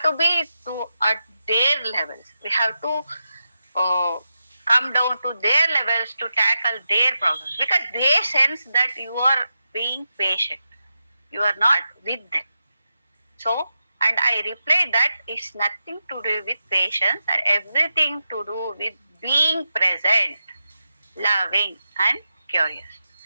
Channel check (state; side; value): inverted; both; correlation -0.88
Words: to be at their levels. We have to come down to their levels to tackle their problems, because they sense that you are being patient. You are not with them. So, and I reply that it's nothing to do with patience and everything to do with being present, loving, and curious.